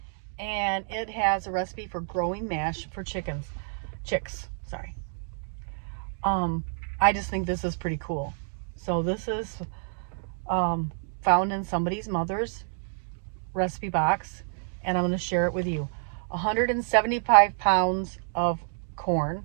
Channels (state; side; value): silent; left; digital silence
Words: And it has a recipe for growing mash for chicks. I just think this is pretty cool. So this is found in somebody's mother's recipe box, and I'm going to share it with you. 175 pounds of corn,